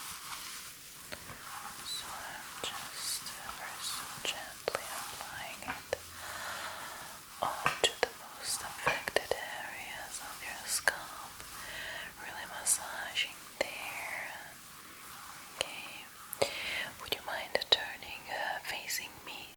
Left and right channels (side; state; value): both; identical; correlation 1.00